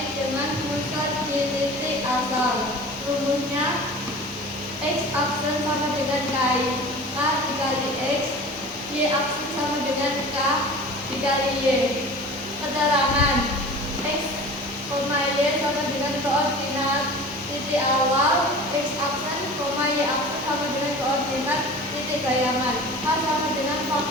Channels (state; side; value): normal; both; correlation 0.39